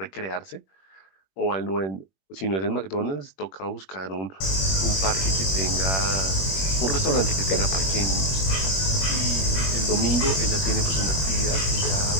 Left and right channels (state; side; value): late; right; 21 ms